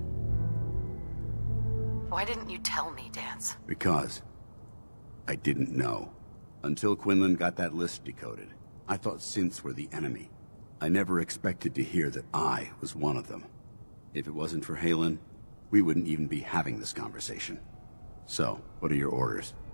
Why didn't you tell me, Danse? Because I didn't know. Until Quinlan got that list decoded, I thought synths were the enemy. I never expected to hear that I was one of them. If it wasn't for Haylen, we wouldn't even be having this conversation. So, what are your orders?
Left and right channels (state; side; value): inverted; both; correlation -1.00